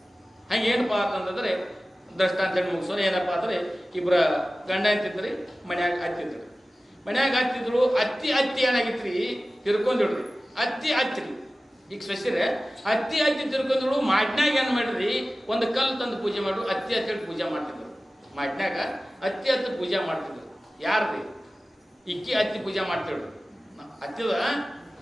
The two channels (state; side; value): normal; both; correlation 0.96